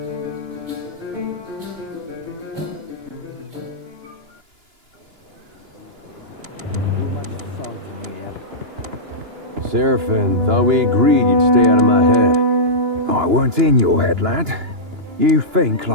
much salt in here. Seraphin, thought we agreed you'd stay out of my head. I weren't in your head, lad. You think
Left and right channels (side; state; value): left; late; 2.9 ms